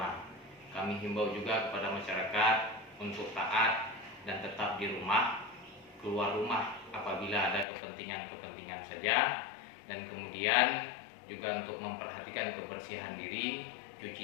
Kami himbau juga kepada masyarakat untuk taat dan tetap di rumah, keluar rumah apabila ada kepentingan-kepentingan saja, dan kemudian juga untuk memperhatikan kebersihan diri,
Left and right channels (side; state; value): right; drops out; at 7.7 s